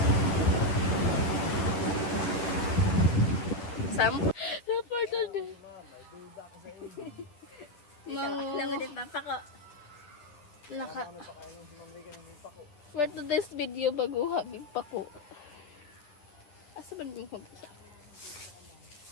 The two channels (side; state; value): right; late; 10 ms